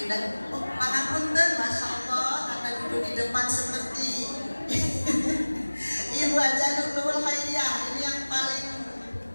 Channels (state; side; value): inverted; both; correlation -1.00